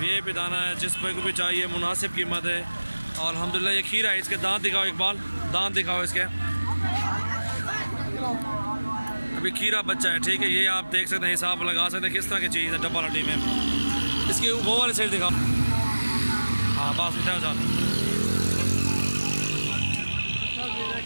दाना है, जिस भाई को भी चाहिए मुनासिब कीमत है। और अल्हम्दुलिल्लाह ये खीरा है, इसके दांत दिखाओ इकबाल, दांत दिखाओ इसके। अभी खीरा बच्चा है। ठीक है, ये आप देख सकते हैं, हिसाब लगा सकते हैं किस तरह की चीज़ है डब्बा हड्डी में। इसकी वो वाली साइड दिखाओ। हाँ बस उठा जा।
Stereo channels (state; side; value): inverted; both; correlation -1.00